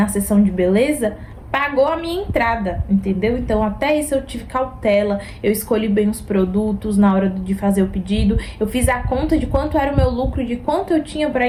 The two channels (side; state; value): both; identical; correlation 1.00